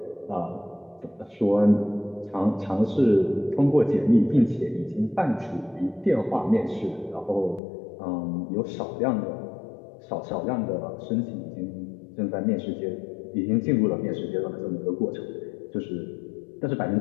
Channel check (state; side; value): drops out; right; at 7.6 s